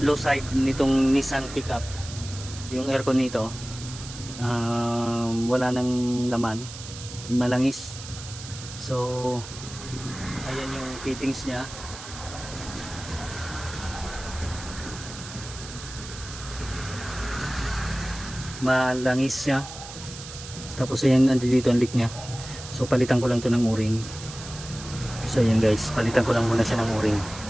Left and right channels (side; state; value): right; noise; hiss, 13 dB below the sound